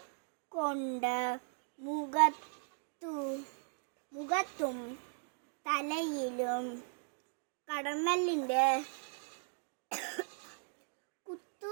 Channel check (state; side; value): silent; left; 52 dB below the other